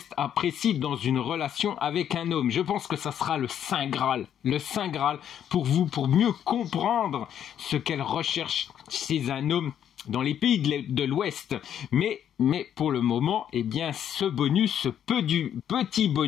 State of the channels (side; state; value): right; quieter; 9.6 dB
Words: apprécient dans une relation avec un homme. Je pense que ça sera le Saint Graal pour vous, pour mieux comprendre ce qu'elles recherchent chez un homme dans les pays de l'Ouest. Mais pour le moment, ce petit